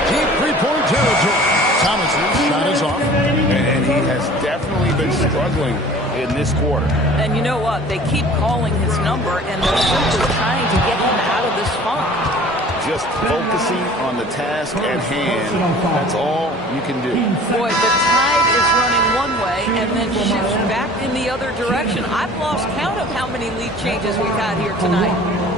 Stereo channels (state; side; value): normal; both; correlation 0.46